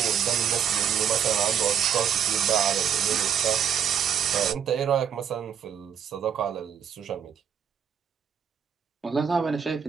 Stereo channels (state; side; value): quieter; left; 8.2 dB